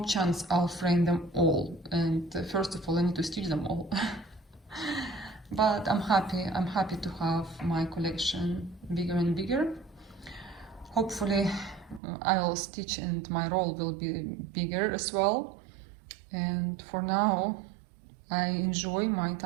chance I'll frame them all, and first of all I need to stitch them all. But I'm happy to have my collection bigger and bigger. Hopefully I will stitch and my roll will be bigger as well. And for now I enjoy my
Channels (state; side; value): drops out; left; at 12.0 s